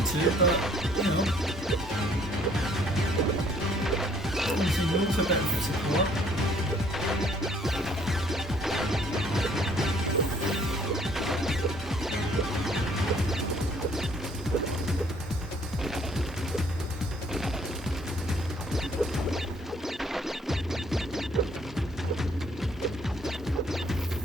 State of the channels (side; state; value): both; normal; correlation 0.62